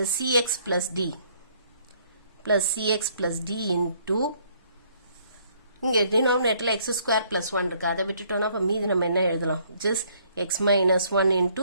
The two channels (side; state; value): both; inverted; correlation -0.64